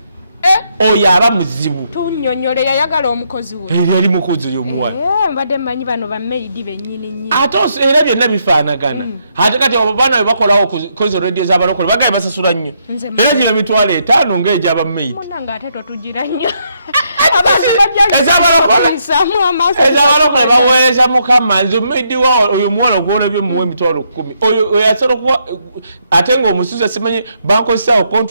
oyo aba muzibu tunyonyole yayagala omukozi we yali mukozi oyo omuwala mbadde mmanyi bano bamaidi bennyini ate era byonna bifaanagana ate kati abo baana bebakolawo kozo radio z'abalokole bagali basasula nnyo era gino emitwalo 5 ng'egy'abamaidi munanga ate totugira nnyo ezabalokole baweereza mukama nze omumaidi wa oyo omuwala ogwona byomuwa emitwalo 10 oyo asobola okuba ate ng'omusuza simanyi bankozesaawo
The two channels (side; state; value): both; inverted; correlation -0.76